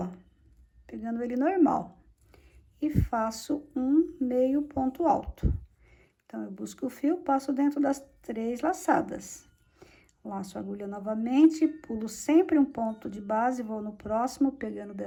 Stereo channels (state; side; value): identical; both; correlation 1.00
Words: pegando ele normal, e faço um meio ponto alto. Então, eu busco o fio, passo dentro das 3 laçadas. Laço a agulha novamente, pulo sempre um ponto de base, vou no próximo, pegando